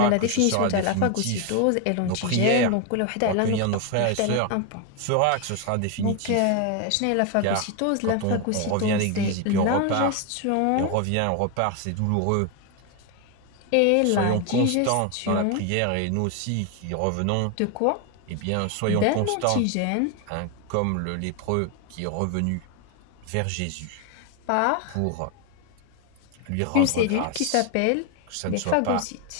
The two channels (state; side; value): different; both; correlation 0.01